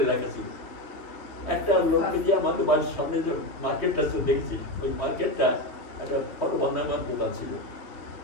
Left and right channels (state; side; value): late; right; 2.8 ms